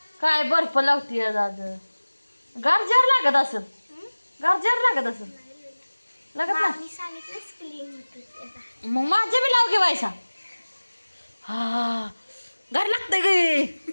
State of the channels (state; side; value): inverted; both; correlation -1.00